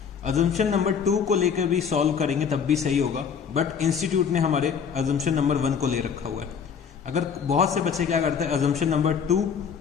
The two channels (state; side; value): quieter; right; 6.9 dB